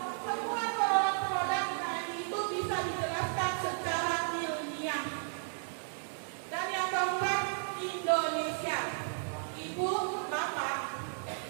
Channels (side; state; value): left; silent; 55 dB below the other